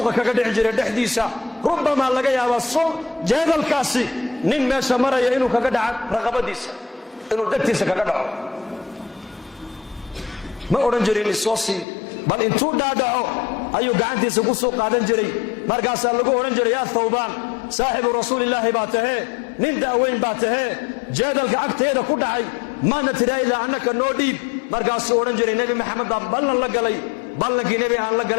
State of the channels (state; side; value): drops out; right; at 11.9 s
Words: كقد عجر دحديسا ربما لقى يا السوق جيدل كاسي نين ماشا مريا إنو كقد رغبة ديسا إنو دكتيسا كقد ما أورنجري الصوصي بل انتو دادعو أيو قعنتيسا قصو قادن جري مرقاسا لقو أورنجري يا ثوبان صاحب رسول الله باته نين داوين باته جادل عقتيدا ku dhacay maana tiraayda annaka noo dhiib markaas oo oran jiray nabi maxamed ballan la galay ballankii nabi aan la